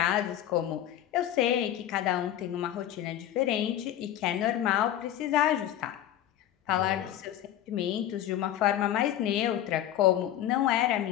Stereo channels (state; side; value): quieter; right; 11.8 dB